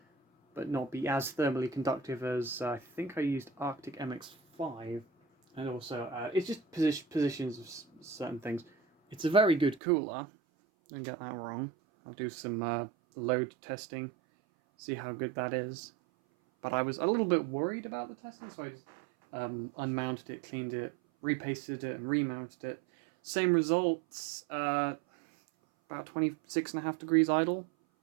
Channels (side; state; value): left; drops out; at 9.8 s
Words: but not be as thermally conductive as I think I used Arctic MX5. And also, it's just positions of certain things. It's a very good cooler. Don't get that wrong. I'll do some load testing, see how good that is. But I was a little bit worried about the testing, so I just unmounted it, cleaned it, repasted it, and remounted it. Same results, about 26.5 degrees idle.